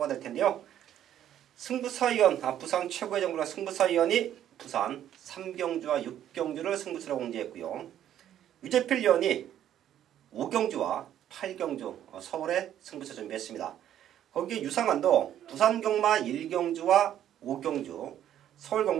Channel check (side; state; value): left; quieter; 11.0 dB